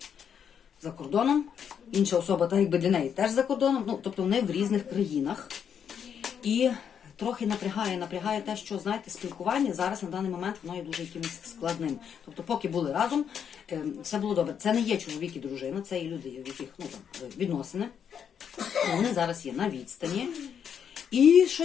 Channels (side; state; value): right; quieter; 7.9 dB